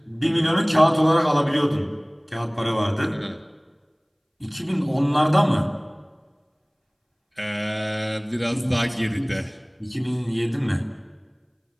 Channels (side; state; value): both; identical; correlation 1.00